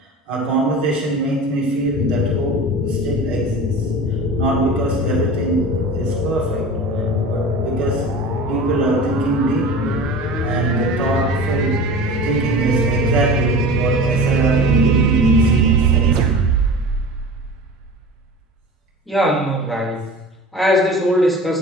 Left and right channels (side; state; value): both; normal; correlation 0.36